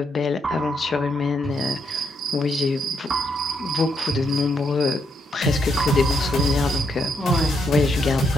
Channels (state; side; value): normal; both; correlation 0.77